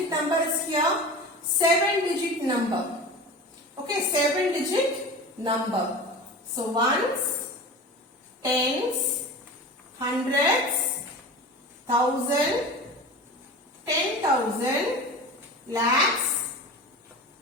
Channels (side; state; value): both; normal; correlation 0.33